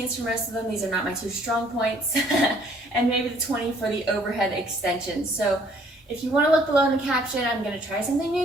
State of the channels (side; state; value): both; normal; correlation 0.61